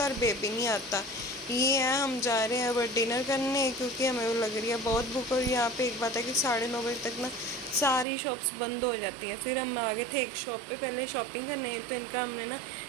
और बेबी नहीं आता। ये है हम जा रहे हैं अब डिनर करने, क्योंकि हमें लग रही है बहुत भूख। और यहाँ पे एक बात है कि 9:30 बजे तक ना सारी शॉप्स बंद हो जाती हैं। फिर हम आगे थे एक शॉप पे पहले शॉपिंग करने, तो इनका हमने ना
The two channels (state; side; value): drops out; left; at 8.1 s